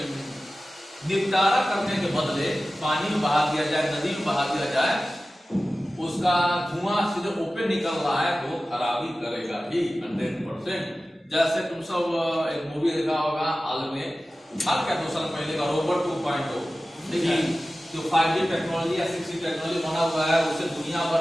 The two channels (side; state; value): both; normal; correlation 0.96